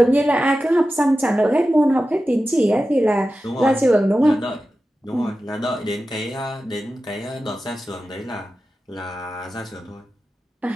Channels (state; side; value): normal; both; correlation 0.93